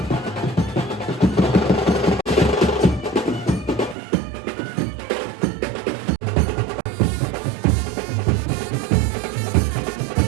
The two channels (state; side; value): drops out; left; at 4.0 s